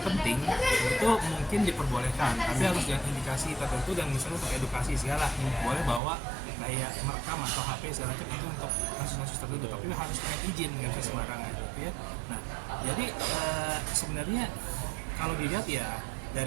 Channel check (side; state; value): left; drops out; at 6.0 s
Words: penting itu mungkin diperbolehkan, tapi harus dengan indikasi tertentu. Dan misalnya untuk edukasi segala boleh bawa kayak merekam atau HP segala macam, itu untuk kasus-kasus tertentu, tapi harus punya izin, nggak bisa sembarangan gitu ya. Nah, jadi sebenarnya kalau dilihat ya